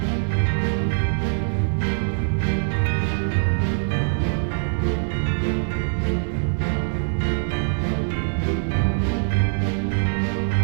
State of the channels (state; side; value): silent; left; 63 dB below the other